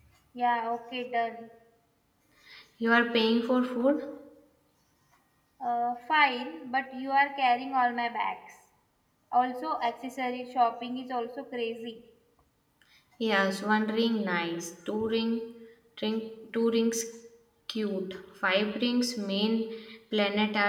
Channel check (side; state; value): both; identical; correlation 1.00